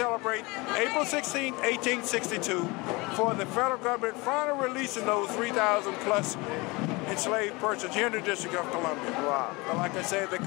April 16, 1862, for the federal government finally releasing those 3,000 plus enslaved persons here in the District of Columbia. Wow. But like I said, they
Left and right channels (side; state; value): right; quieter; 24.6 dB